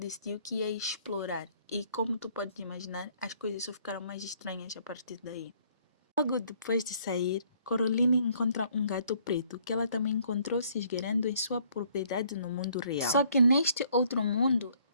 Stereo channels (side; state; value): both; inverted; correlation -0.63